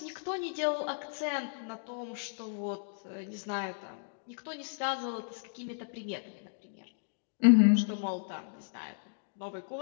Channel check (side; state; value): right; silent; digital silence